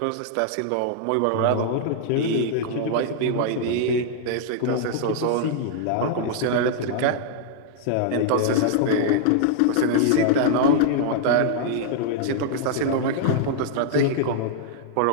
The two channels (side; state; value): both; different; correlation -0.01